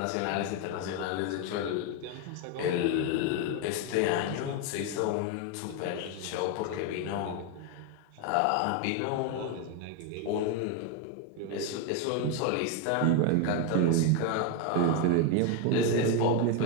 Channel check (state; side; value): different; both; correlation 0.01